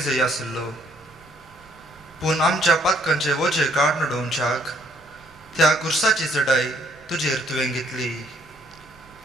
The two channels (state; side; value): noise; right; rumble, 29 dB below the sound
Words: आसलो, पूण आमच्या पातकांचे वजे काड नडोवच्याक त्या कुर्साची चडाई तुजेर तुवें घेतली.